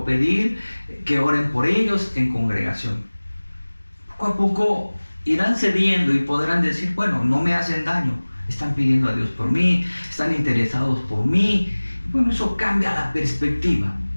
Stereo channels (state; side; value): inverted; both; correlation -1.00